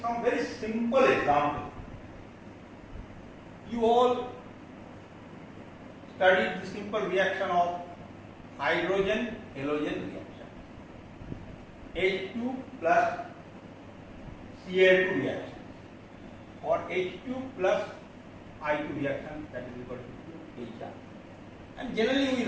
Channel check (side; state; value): both; identical; correlation 1.00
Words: some very simple example. You all studied the simple reaction of hydrogen-halogen reaction. H2 plus Cl2 reaction, or H2 plus I2 reaction, that is equal to HR. And generally we